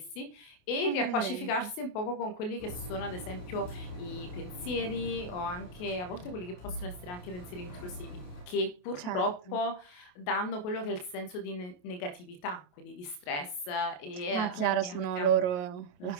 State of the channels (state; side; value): late; right; 28 ms